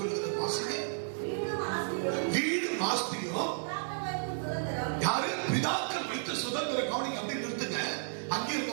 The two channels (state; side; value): silent; left; 56 dB below the other